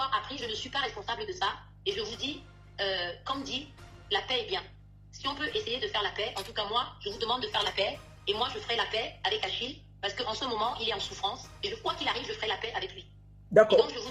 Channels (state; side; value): identical; both; correlation 1.00